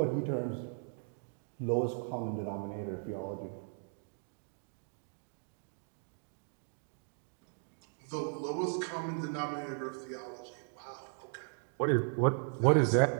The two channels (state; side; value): silent; left; 53 dB below the other